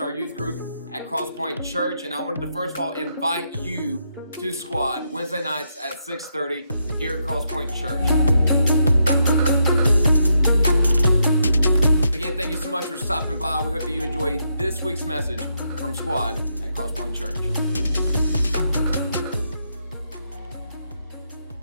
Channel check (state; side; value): inverted; both; correlation -0.79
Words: youth group at Crosspoint Church, and I wanted to first of all invite you to Squad Wednesday nights at 6:30 here at Crosspoint Church. Again, thank you so much for stopping by. We hope that you enjoy this week's message from Squad at Crosspoint Church.